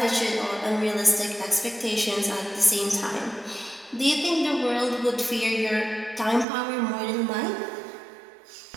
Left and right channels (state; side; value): drops out; left; at 6.5 s